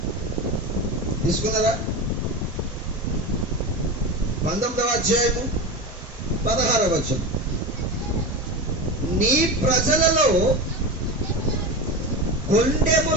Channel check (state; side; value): normal; both; correlation 0.23